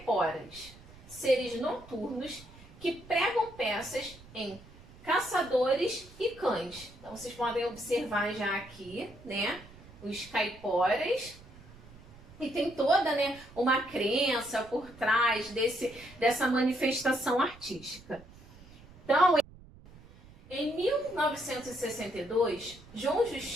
seres noturnos que pregam peças em caçadores e cães. Então, vocês podem observar já aqui, né, os caiporas. E tem toda, né, uma crença por trás dessa manifestação artística. Então, em 1962, João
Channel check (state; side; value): noise; right; rumble, 21 dB below the sound